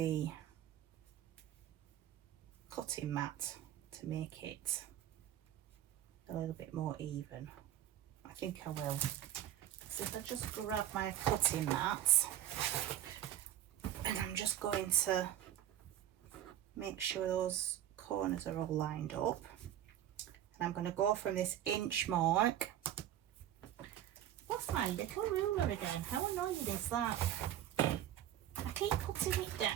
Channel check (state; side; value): quieter; left; 11.7 dB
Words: cutting mat to make it a little bit more even? I think I will. So if I just grab my cutting mat, and I'm just going to make sure those corners are all lined up. And I'm going to go from this inch mark. What's my little ruler again? How annoying is that? I keep putting it